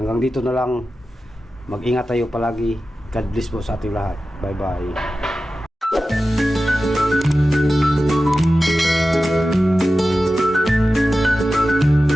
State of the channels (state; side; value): normal; both; correlation 0.94